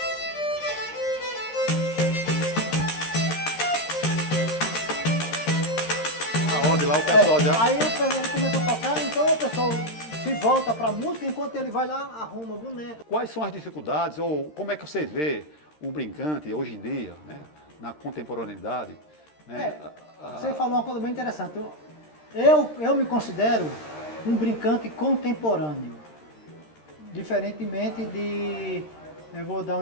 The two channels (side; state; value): right; late; 13 ms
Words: Aonde lá o pessoal já... Aí ele começa a tocar, então o pessoal se volta pra música, enquanto ele vai lá, arruma o boneco. Quais são as dificuldades ou como é que você vê o brincante hoje em dia, né? Na contemporaneidade? Né? Você falou uma coisa bem interessante. Eu me considero um brincante contemporâneo. Diferentemente de, eu vou dar